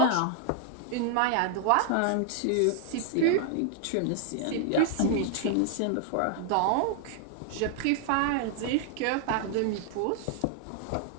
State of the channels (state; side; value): different; both; correlation 0.00